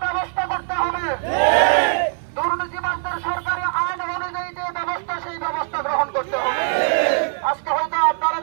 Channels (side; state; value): left; silent; 60 dB below the other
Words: ব্যবস্থা করতে হবে। দুর্নীতিবাজদের সরকারি আইন অনুযায়ী যে ব্যবস্থা, সেই ব্যবস্থা গ্রহণ করতে হবে। আজকে হয়তো আপনারা